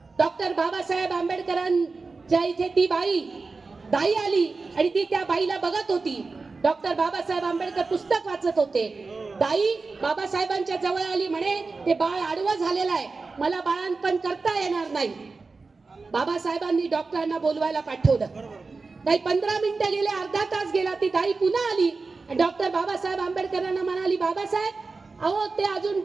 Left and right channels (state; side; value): quieter; left; 4.1 dB